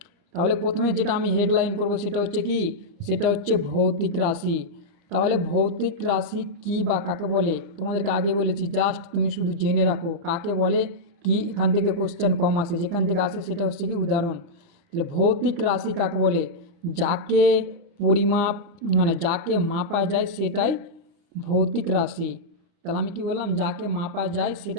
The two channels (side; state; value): left; late; 29 ms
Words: তাহলে প্রথমে যেটা আমি হেডলাইন করব সেটা হচ্ছে কি, সেটা হচ্ছে ভৌতিক রাশি। তাহলে ভৌতিক রাশি কি বা কাকে বলে তোমাদেরকে আগে বলেছি, জাস্ট তুমি শুধু জেনে রাখো কাকে বলে কি। এখান থেকে কোশ্চেন কম আসে, যেখান থেকে আসে সেটা হচ্ছে কি উদাহরণ। তাহলে ভৌতিক রাশি কাকে বলে? যাকে পরিমাপ মানে যাকে মাপা যায় সেটাই ভৌতিক রাশি। তাহলে আমি কি বললাম? যাকে মাপা যায়